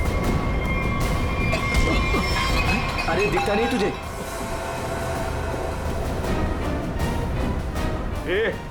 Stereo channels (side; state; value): both; identical; correlation 1.00